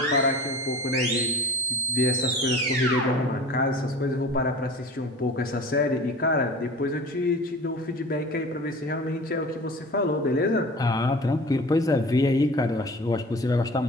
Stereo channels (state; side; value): normal; both; correlation 0.40